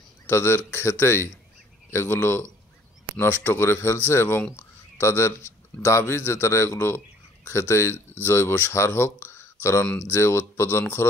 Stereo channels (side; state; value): both; normal; correlation 0.56